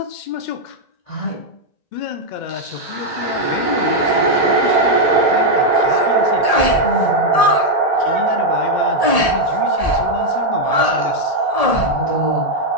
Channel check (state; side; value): late; right; 1.7 ms